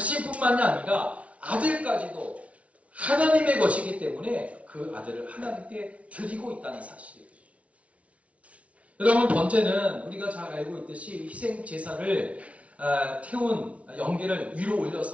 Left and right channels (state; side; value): late; left; 0.064 ms